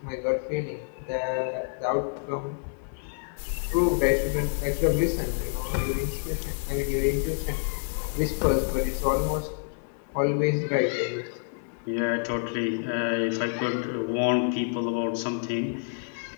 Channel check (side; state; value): right; silent; 57 dB below the other